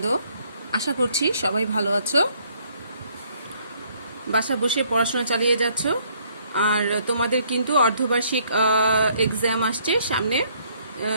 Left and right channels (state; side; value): inverted; both; correlation -0.65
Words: আশা করছি সবাই ভালো আছো, বাসা বসে পড়াশোনা চালিয়ে যাচ্ছ। আর তোমাদের কিন্তু অর্ধবার্ষিক এক্সাম আসছে সামনে।